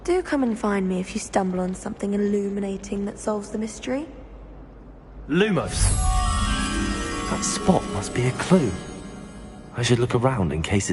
Do come and find me if you stumble on something illuminating that solves the mystery. Lumos! That spot must be a clue. I should look around in case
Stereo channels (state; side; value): identical; both; correlation 1.00